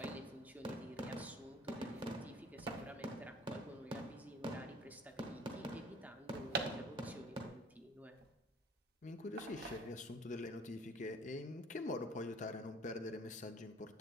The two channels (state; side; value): normal; both; correlation 0.50